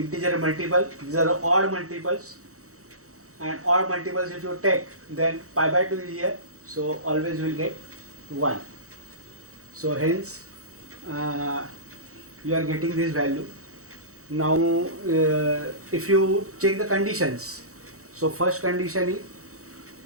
multiple. These are the odd multiples, and odd multiples if you take, then pi by 2 is here, so always you will get 1. So hence you are getting this value. Now if you check the conditions, so first condition is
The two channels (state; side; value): late; left; 0.65 ms